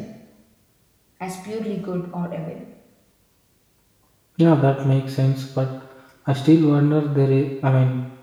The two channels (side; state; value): both; identical; correlation 1.00